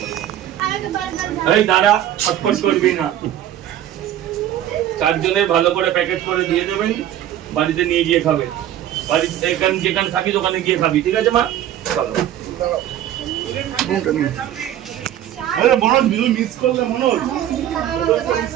এই দাঁড়া, ছটফট করবি না। 4 জনের ভালো করে প্যাকেট করে দিয়ে দেবেন, বাড়িতে নিয়ে গিয়ে খাবে। বাড়িতে এখানে যেখানে থাকিস ওখানে গিয়ে খাবি, ঠিক আছে মা? চলো। মনোজ মিস করলে, মনোজ মিস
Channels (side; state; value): left; quieter; 11.7 dB